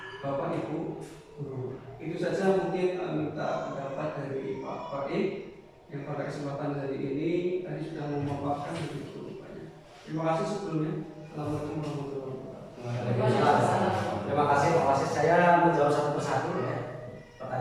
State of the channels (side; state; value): both; identical; correlation 1.00